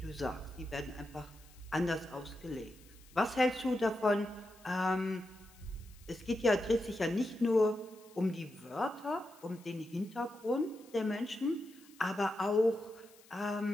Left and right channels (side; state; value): left; noise; hiss, 25 dB below the sound